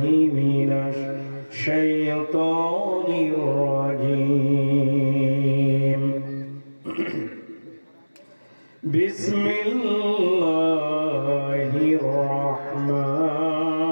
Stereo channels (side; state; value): both; inverted; correlation -1.00